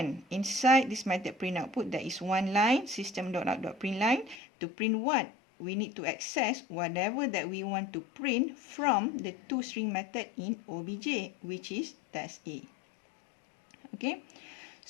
inside this method print output, there is one line, system.out.println, to print what? we need to access whatever that we want to print from the toString method in OBJ, which is test A. Okay,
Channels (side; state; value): right; drops out; at 4.4 s